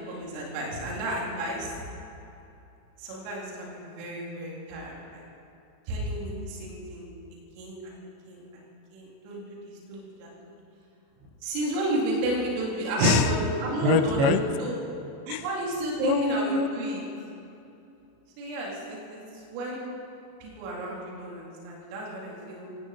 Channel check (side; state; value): left; late; 37 ms